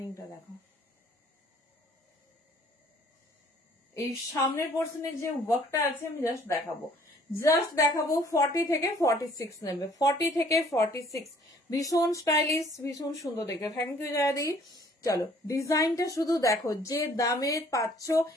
দেখো, এই সামনের পোর্শনের যে ওয়ার্কটা আছে আমি জাস্ট দেখাবো, 40 থেকে 46 নেবে। 40 থেকে 46 ভীষণ স্টাইলিশ, ভীষণ সুন্দর দেখে। থ্যাংক ইউ জায়াদি। চলো ডিজাইনটা শুধু দেখো, যে দামে পাচ্ছ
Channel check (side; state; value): both; normal; correlation 0.58